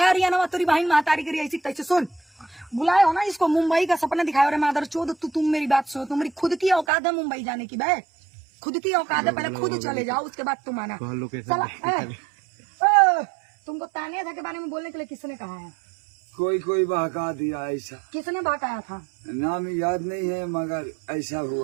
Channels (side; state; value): left; drops out; at 6.9 s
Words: ये ना तेरी बहन महतारी करी ऐसी तैसे सुन बुलाए हो ना इसको मुंबई का सपना दिखाया। अरे मादर चोद तुम मेरी बात सुनो, तुम्हारी खुद की औकात है मुंबई जाने की बे, खुद की औकात है, पहले खुद चले जाओ उसके बाद तुम आना। तुमको तानिया के बारे में बोलने के लिए किसने कहा है? कोई बहका दिया ऐसा। किसने बहकाया था? नाम याद नहीं है मगर ऐसा